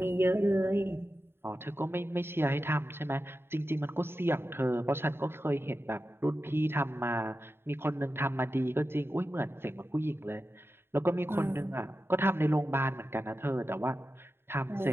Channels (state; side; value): late; left; 0.11 ms